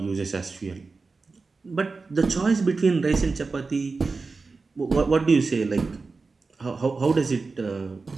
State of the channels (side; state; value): left; quieter; 4.1 dB